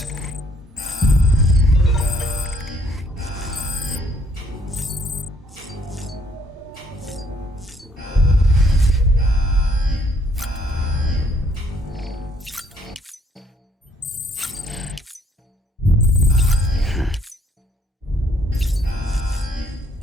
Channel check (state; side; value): normal; both; correlation 0.65